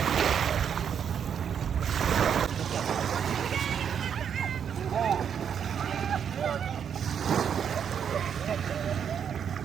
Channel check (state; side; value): quieter; left; 7.9 dB